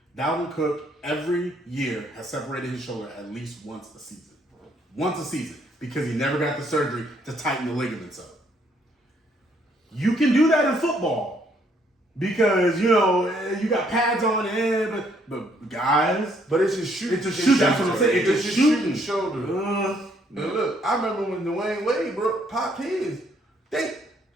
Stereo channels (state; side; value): normal; both; correlation 0.68